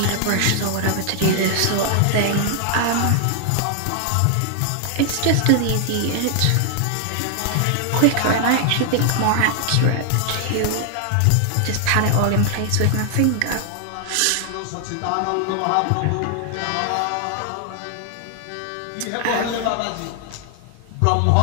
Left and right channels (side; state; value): both; different; correlation 0.00